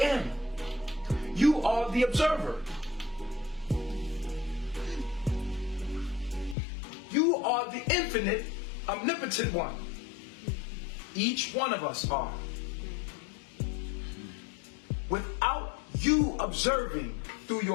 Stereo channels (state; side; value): drops out; right; at 6.6 s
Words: You are the observer. You are the infinite, omnipotent one. Each one of us are. Without you observing through